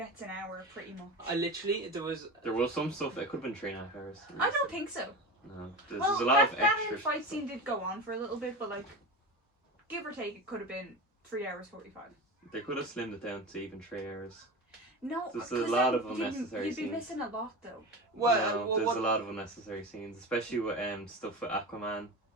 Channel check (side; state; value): both; normal; correlation 0.27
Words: an hour, pretty much. I literally there was There was some stuff that could have been 3.5 hours. I don't think so. No, there's Well, a lot of that extra fight stuff. scene did go on for a little bit, but like, give or take, it could have been 3 hours 45. They could have slimmed it down to even 3 hours. No, There's a 'cause lot then of unnecessary you'd be scenes. missing a lot, though. No, there's a lot of unnecessary scenes, especially with stuff with Aquaman